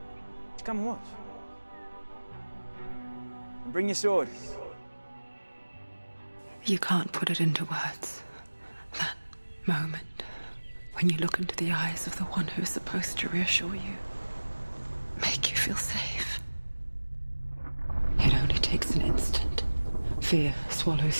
Come and watch. And bring your sword. You can't put it into words. That moment when you look into the eyes of the one who's supposed to reassure you, make you feel safe. It only takes an instant. Fear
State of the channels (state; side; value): inverted; both; correlation -1.00